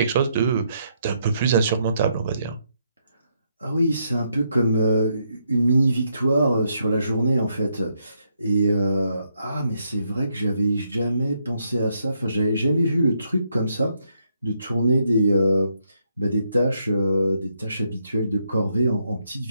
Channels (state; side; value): inverted; both; correlation -0.77